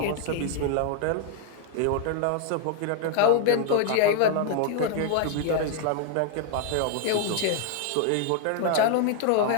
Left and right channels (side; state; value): both; different; correlation 0.00